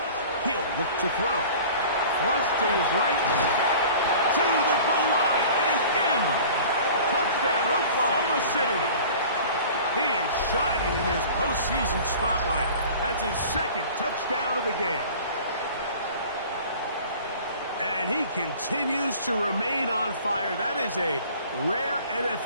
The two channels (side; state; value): both; inverted; correlation -0.43